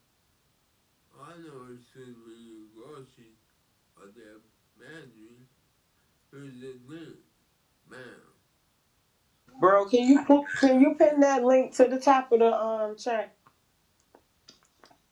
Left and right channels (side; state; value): both; identical; correlation 1.00